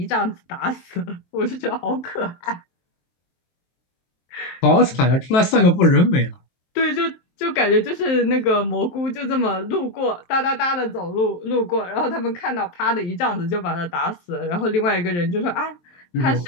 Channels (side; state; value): right; late; 23 ms